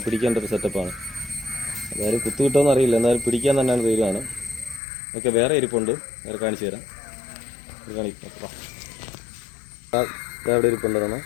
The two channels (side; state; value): right; drops out; at 4.8 s